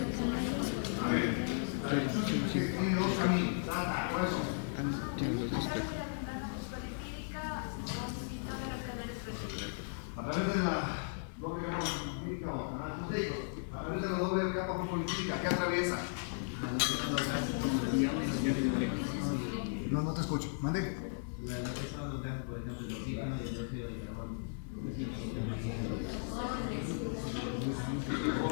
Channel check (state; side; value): silent; right; digital silence